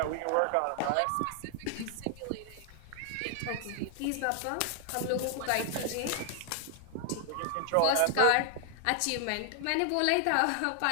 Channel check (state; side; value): different; both; correlation 0.00